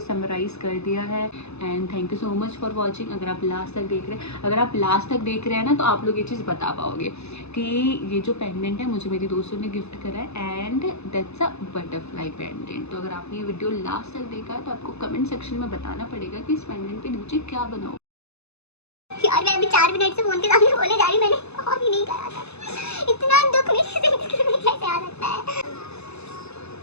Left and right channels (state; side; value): late; right; 0.80 ms